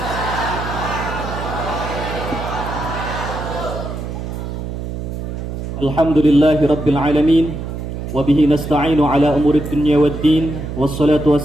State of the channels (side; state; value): right; noise; hum, 6 dB below the sound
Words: Alhamdulillahi rabbil alamin, wabihi nasta'inu ala umurid dunya waddin, wassalatu